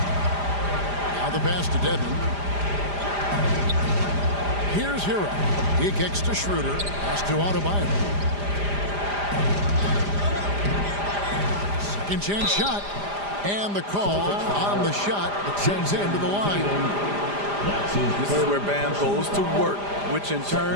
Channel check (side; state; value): left; late; 5.0 ms